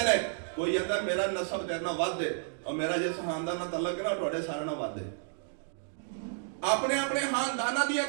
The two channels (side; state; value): left; silent; digital silence